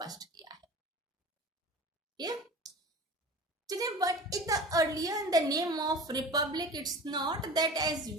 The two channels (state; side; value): normal; both; correlation 0.37